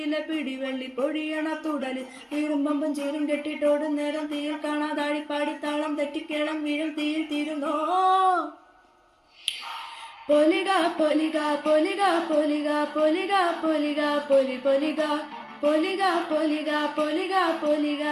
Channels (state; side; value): identical; both; correlation 1.00